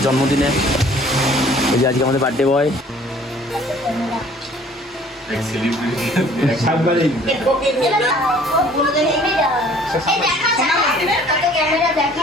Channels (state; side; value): normal; both; correlation 0.54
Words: জন্মদিনে। এই যে আজকে আমাদের birthday boy.